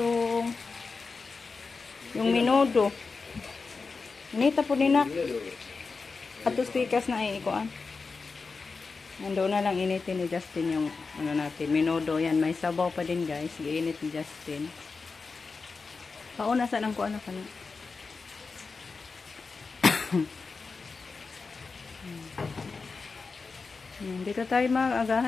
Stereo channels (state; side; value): quieter; right; 4.5 dB